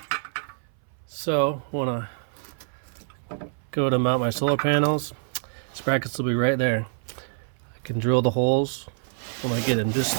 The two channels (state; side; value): silent; left; 59 dB below the other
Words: So, want to go to mount my solar panels. These brackets will be right there. I can drill the holes when I get them